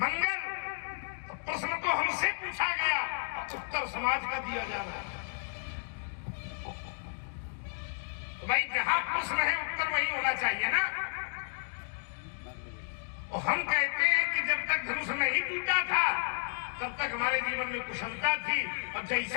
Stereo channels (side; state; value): right; silent; digital silence